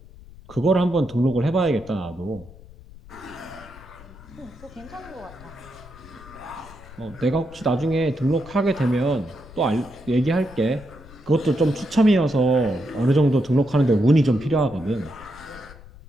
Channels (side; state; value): left; noise; rumble, 20 dB below the sound